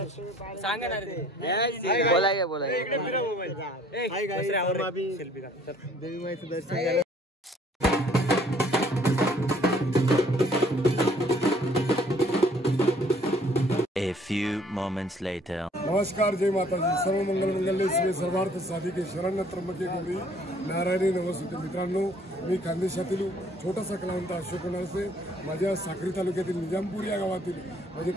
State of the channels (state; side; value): normal; both; correlation 0.59